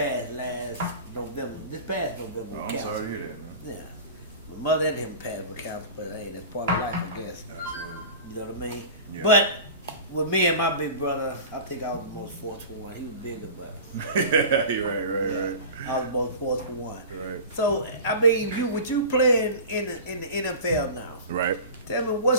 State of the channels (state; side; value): inverted; both; correlation -0.35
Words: last November. This past November. Oh, with I'm cancer. sorry to hear that, man. Yeah. My mother and him passed with cancer, but hey, that's part of life, I guess. Absolutely. You know what I mean? Yeah. But with me and my big brother, I think I was the most fortunate one. He was bigger, but Right. I was the most fortunate one. Right. So, I mean, with you playing in the NFL now, Right. tell me,